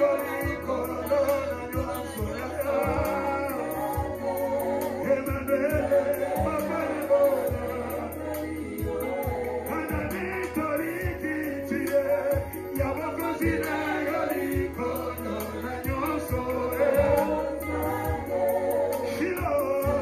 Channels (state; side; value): identical; both; correlation 1.00